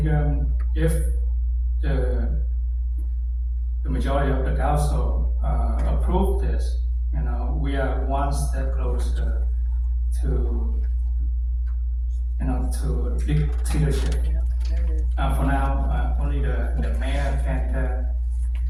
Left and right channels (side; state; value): both; identical; correlation 1.00